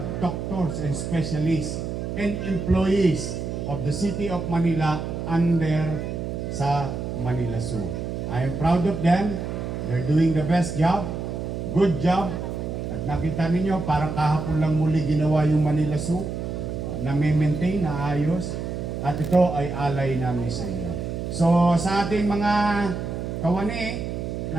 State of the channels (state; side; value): noise; right; hum, 4 dB below the sound